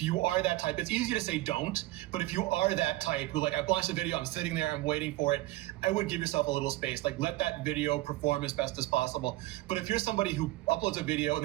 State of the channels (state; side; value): quieter; left; 18.2 dB